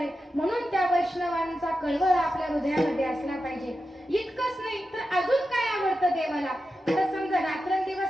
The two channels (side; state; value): both; normal; correlation 0.91